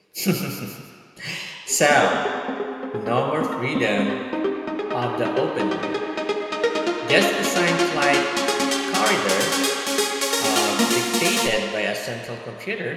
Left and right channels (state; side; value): identical; both; correlation 1.00